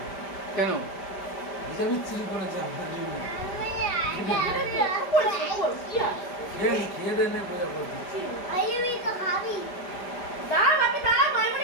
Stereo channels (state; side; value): late; right; 5.0 ms